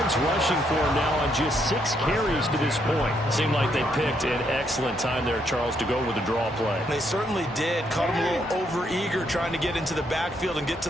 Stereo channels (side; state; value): both; normal; correlation 0.74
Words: rushing for him now on just 6 carries to this point. Seemed like they picked an excellent time there, Charles, to go with the draw play. They certainly did. Caught him a little over-eager trying to get into the backfield and get to